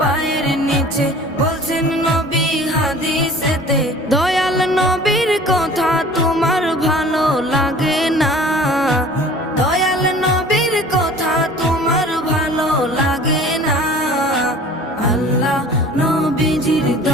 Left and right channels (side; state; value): both; normal; correlation 0.45